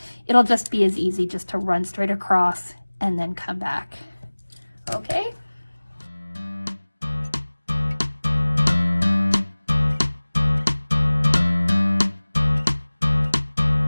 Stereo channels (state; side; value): inverted; both; correlation -1.00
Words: it'll just be as easy just to run straight across and then come back. Okay?